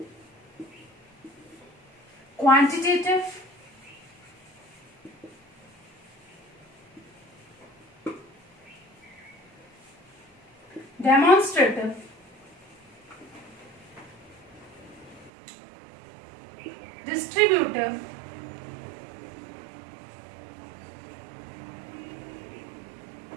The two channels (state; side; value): drops out; left; at 15.3 s